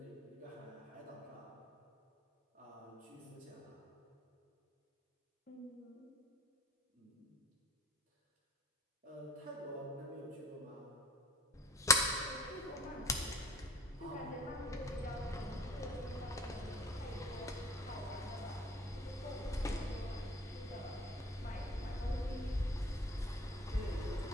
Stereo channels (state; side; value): normal; both; correlation 0.45